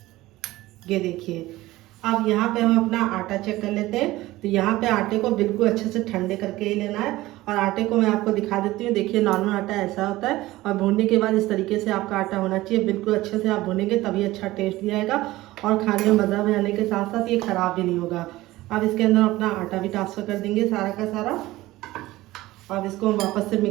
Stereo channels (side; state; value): left; quieter; 17.7 dB